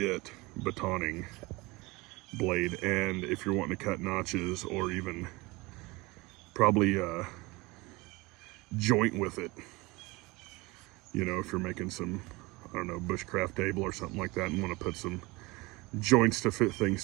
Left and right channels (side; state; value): left; quieter; 23.4 dB